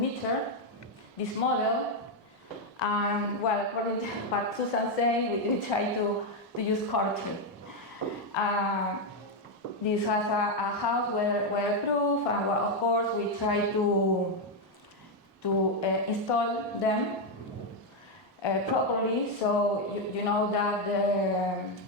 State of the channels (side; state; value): both; normal; correlation 0.03